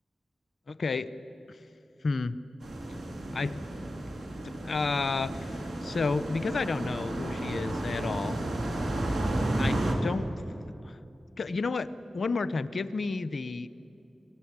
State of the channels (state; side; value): normal; both; correlation 0.92